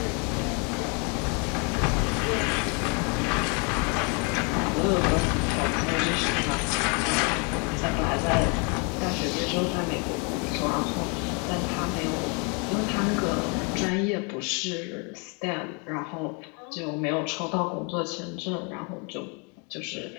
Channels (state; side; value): quieter; right; 34.2 dB